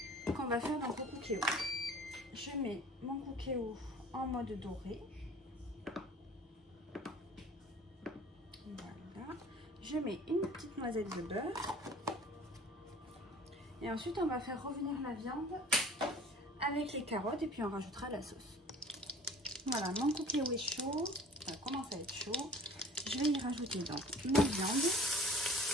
qu'on va faire donc au cookéo. Je mets mon cookéo en mode doré. Voilà. Je mets une petite noisette de beurre. Et ensuite, on va faire revenir la viande avec les carottes et puis on rajoutera la sauce. Voilà, mon cookéo est chaud, ça commence à être chaud. Je vais y rajouter donc ma viande.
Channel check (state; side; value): normal; both; correlation 0.47